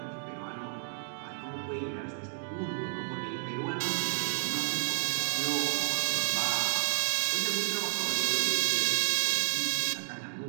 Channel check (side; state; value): left; silent; digital silence